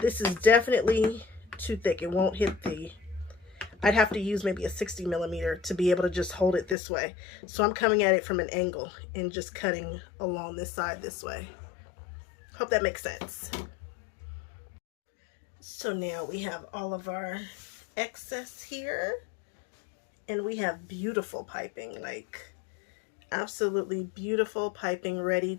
is definitely too thick. It won't hit the... I'd have to use maybe a 60 millimeter to be able to just hold it this way. So I'm coming at it from an angle and just cutting along this side this way. Hope that makes sense. So now we have all of our excess here. And we have beautiful piping, like absolutely beautiful piping ready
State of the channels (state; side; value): drops out; right; at 6.8 s